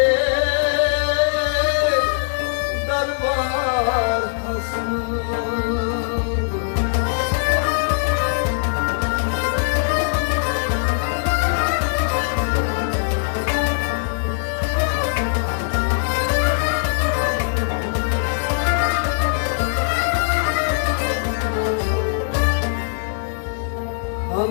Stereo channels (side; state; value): right; silent; digital silence